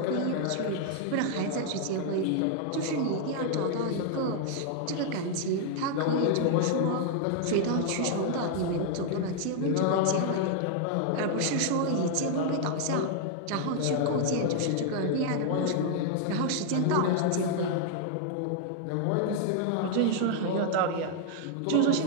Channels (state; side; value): different; both; correlation 0.00